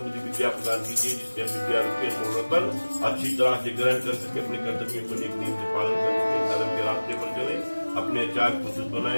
विद्या प्रदान कीजिए, जिससे हम विद्या रूपी मनोरतन अच्छी तरह से ग्रहण कर सके, अपने कर्तव्यों को एक नियम से पालन कर सके, धर्म के रास्ते पर चले, अपने आचार को शुद्ध बनाए,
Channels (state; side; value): inverted; both; correlation -1.00